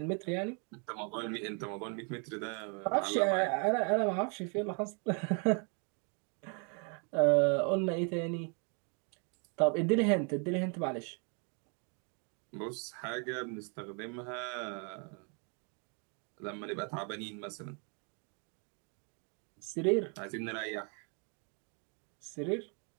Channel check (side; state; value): left; quieter; 37.7 dB